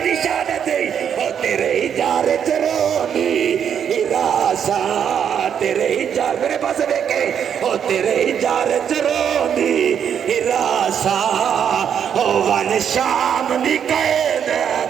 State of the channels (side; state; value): left; quieter; 8.3 dB